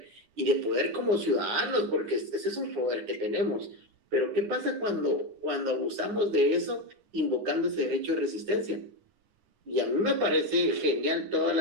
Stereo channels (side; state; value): left; late; 9.6 ms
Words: y de poder como ciudadanos, porque ese es un poder que tenemos. Pero ¿qué pasa cuando abusamos de eso, invocando ese derecho de resistencia? Y a mí me parece genial todas